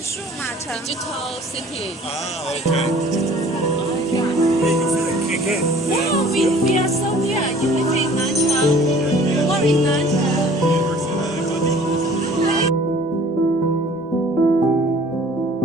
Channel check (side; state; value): both; normal; correlation 0.51